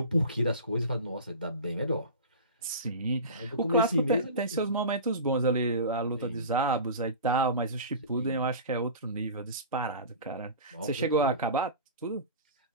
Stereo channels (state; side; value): inverted; both; correlation -0.33